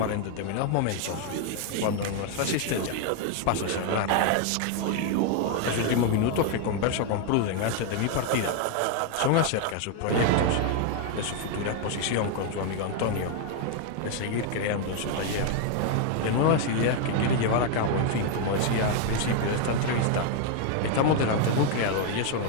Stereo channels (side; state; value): both; different; correlation 0.00